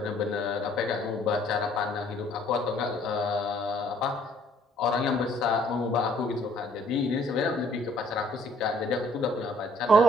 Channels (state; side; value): normal; both; correlation 0.61